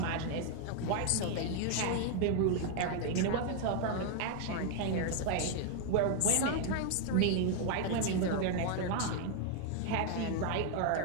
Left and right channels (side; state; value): both; different; correlation 0.00